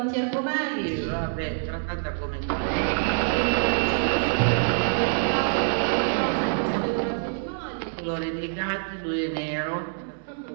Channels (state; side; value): silent; left; 61 dB below the other